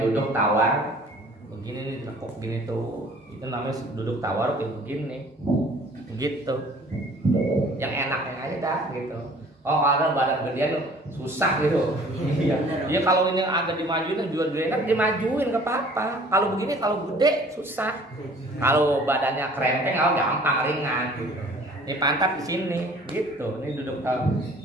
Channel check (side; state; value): both; normal; correlation 0.51